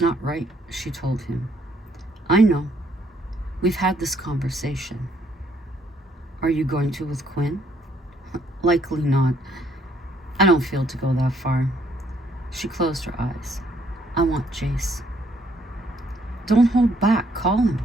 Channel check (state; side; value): normal; both; correlation 0.68